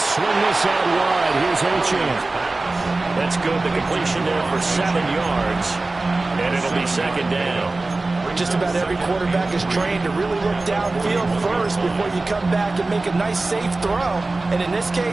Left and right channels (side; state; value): left; quieter; 3.2 dB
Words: swing this out wide. Here's Achane. That's good. The completion there for 7 yards. And it'll be second down. Just about every quarterback is trained to really look downfield first before you come back and make a nice, safe throw. And in this